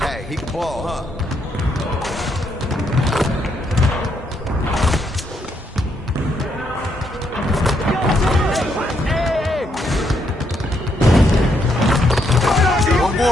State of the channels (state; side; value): normal; both; correlation 0.76